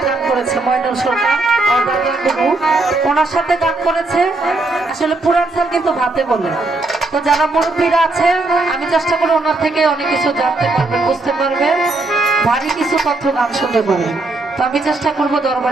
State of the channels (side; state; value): left; quieter; 3.2 dB